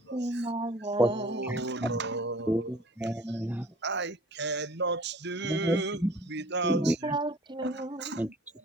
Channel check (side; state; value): both; normal; correlation 0.49